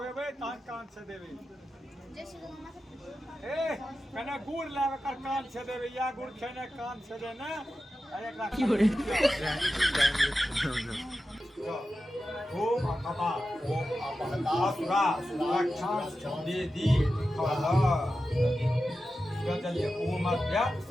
तहन कान से देबे। ए कने गुड़ लाब एकर कान से देबे या गुड़ खेने कान से दे ना एकरा ओम अपा ओम अपहता सुरा सुरक्षा देदी खला चलिए ओम अध्या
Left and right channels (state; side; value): normal; both; correlation 0.92